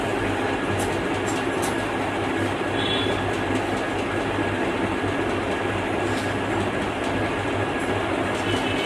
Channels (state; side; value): identical; both; correlation 1.00